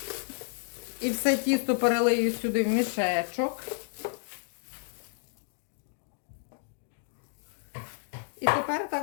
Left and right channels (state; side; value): silent; right; digital silence